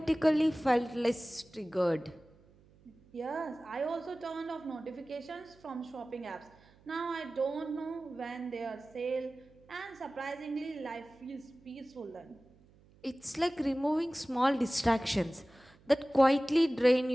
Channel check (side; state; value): right; noise; hum, 28 dB below the sound